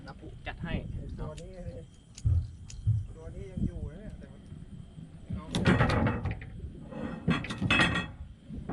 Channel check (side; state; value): both; identical; correlation 1.00